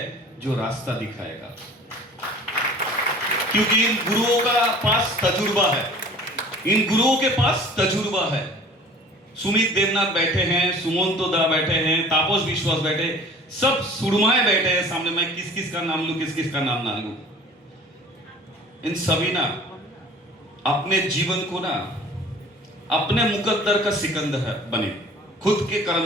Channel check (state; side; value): normal; both; correlation 0.45